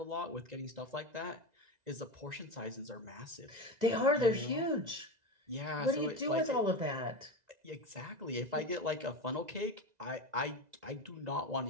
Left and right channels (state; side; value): late; left; 2.0 ms